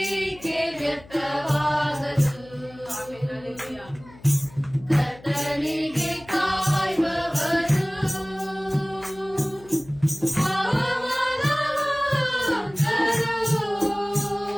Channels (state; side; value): noise; left; hum, 22 dB below the sound